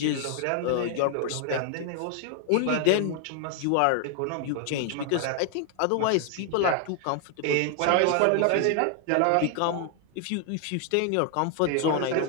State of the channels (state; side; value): different; both; correlation 0.00